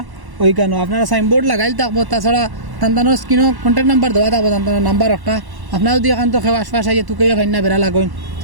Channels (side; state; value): left; late; 1.1 ms